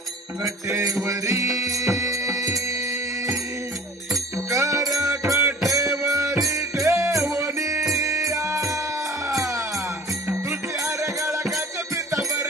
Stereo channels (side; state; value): both; normal; correlation 0.45